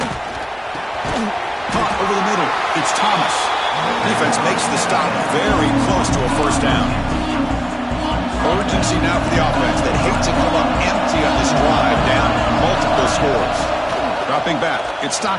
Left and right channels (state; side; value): identical; both; correlation 1.00